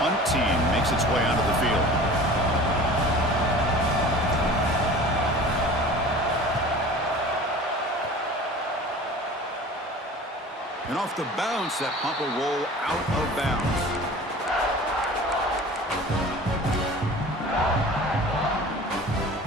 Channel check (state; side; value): normal; both; correlation 0.41